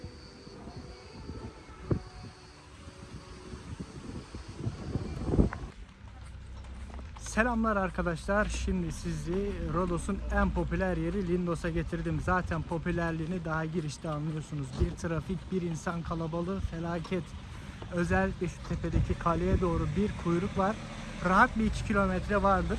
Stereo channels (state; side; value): identical; both; correlation 1.00